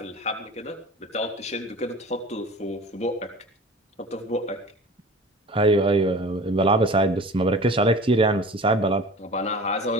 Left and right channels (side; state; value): both; normal; correlation 0.39